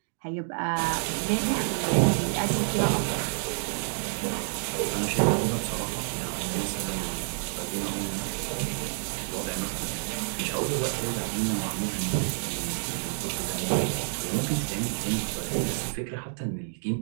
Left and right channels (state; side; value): silent; left; digital silence